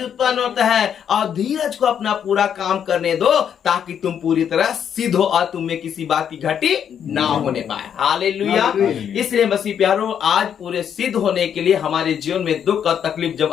उत्पन्न होता है। और धीरज को अपना पूरा काम करने दो ताकि तुम पूरी तरह सिद्ध हो और तुम में किसी बात की घटी ना होने पाए। हालेलुया। हालेलुया। इसलिए मसीह प्यारो, आज पूरे सिद्ध होने के लिए हमारे जीवन में दुख और तकलीफ जब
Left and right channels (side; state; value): right; quieter; 8.5 dB